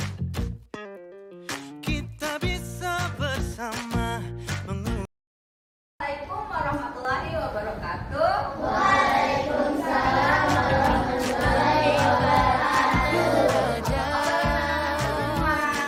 Kita bisa bersama Assalamualaikum warahmatullahi wabarakatuh.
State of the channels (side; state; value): both; identical; correlation 1.00